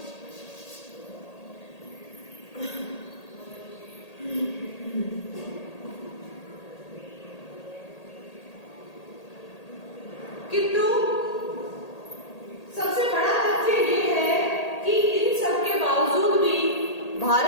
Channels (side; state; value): right; late; 1.8 ms